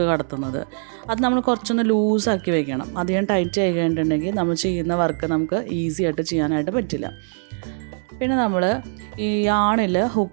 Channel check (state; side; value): silent; left; 58 dB below the other